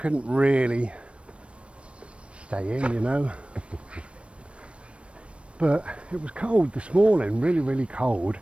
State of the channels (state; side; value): late; left; 0.060 ms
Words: really stay in, you know. But it was cold this morning, really, really cold.